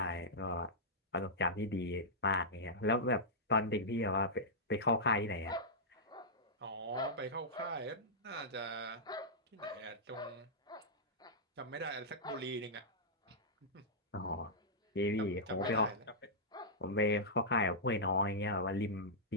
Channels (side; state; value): both; normal; correlation -0.12